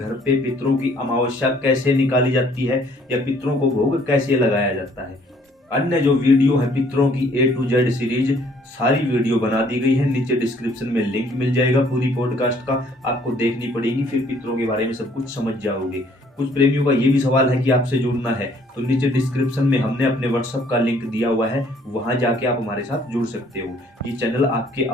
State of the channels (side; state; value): both; normal; correlation 0.61